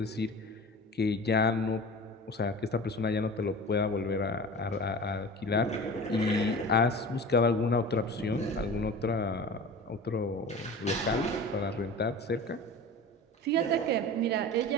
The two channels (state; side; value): normal; both; correlation 0.36